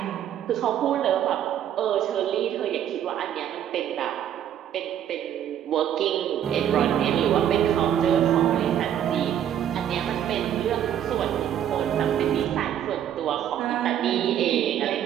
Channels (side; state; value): left; quieter; 10.2 dB